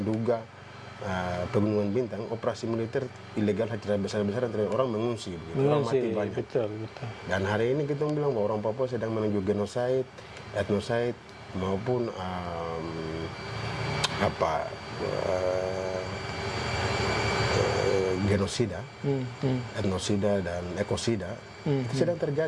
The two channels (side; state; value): both; identical; correlation 1.00